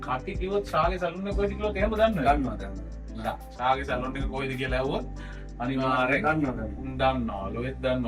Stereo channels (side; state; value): both; identical; correlation 1.00